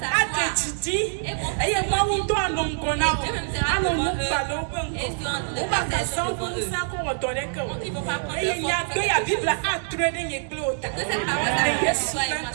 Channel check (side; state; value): left; silent; 62 dB below the other